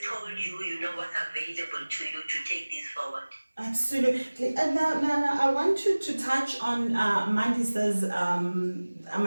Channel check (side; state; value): both; inverted; correlation -1.00